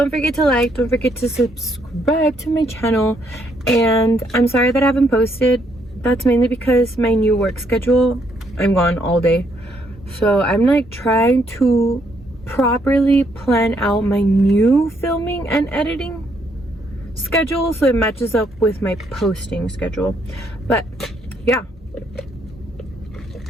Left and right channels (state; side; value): normal; both; correlation 0.72